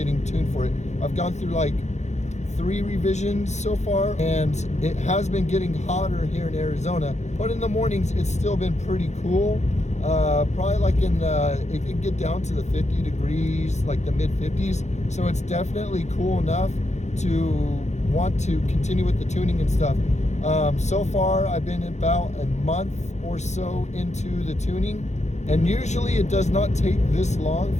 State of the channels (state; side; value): late; right; 0.33 ms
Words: tuned for it. I've gone through like 3 revisions so far, and it has been getting hotter here in Arizona, but in the mornings it's still been pretty cool. Probably like it can get down to the 50 degrees, like the mid 50s. So it's definitely cool enough to want to continue with the tuning and stuff. So far I've been about a month or so into the tuning, and usually it does not take this long